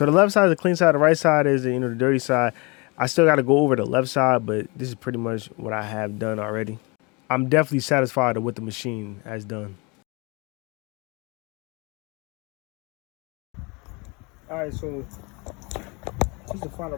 the left side is the clean side. The right side is the dirty side. I still got to go over the left side, but this is pretty much what I have done already. I'm definitely satisfied with what the machine has done. All right, so this is the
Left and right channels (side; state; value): right; quieter; 28.6 dB